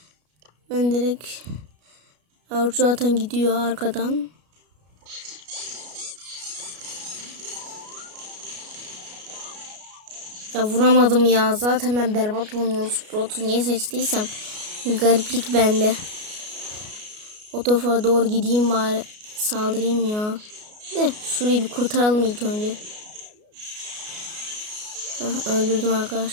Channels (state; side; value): late; left; 33 ms